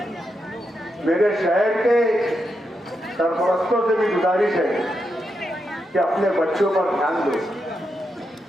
मेरे शहर के सरपरस्तों से भी गुजारिश है कि अपने बच्चों पर ध्यान दो,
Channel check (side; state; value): both; normal; correlation 0.84